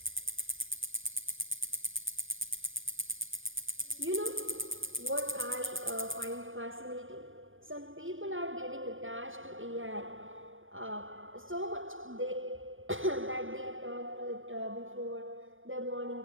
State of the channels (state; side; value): late; left; 0.58 ms